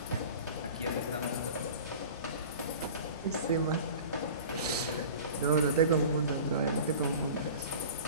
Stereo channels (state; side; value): inverted; both; correlation -0.39